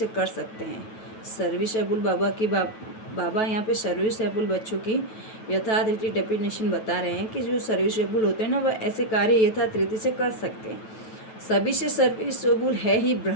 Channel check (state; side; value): late; right; 9.2 ms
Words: कर सकते हैं। सर्विसेबल बाबा यहाँ पे सर्विसेबल बच्चों की यथार्थ रीति डेफिनेशन बता रहे हैं कि जो सर्विसेबल होते हैं ना, वह ऐसे कार्य यथार्थ रीति से कर सकते हैं। सभी से सर्विसेबल है ही